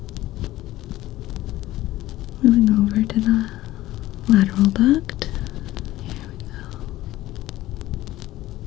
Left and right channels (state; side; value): quieter; right; 16.0 dB